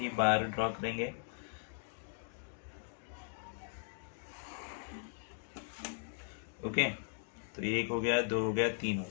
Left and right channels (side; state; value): right; silent; digital silence